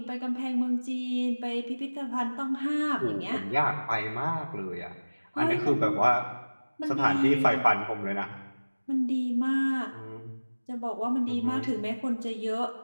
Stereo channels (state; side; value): inverted; both; correlation -1.00